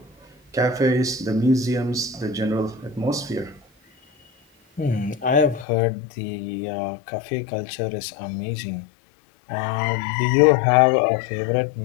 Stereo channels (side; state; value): right; drops out; at 5.7 s